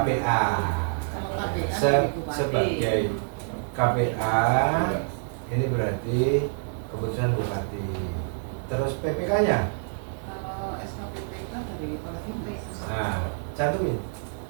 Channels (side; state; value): left; silent; digital silence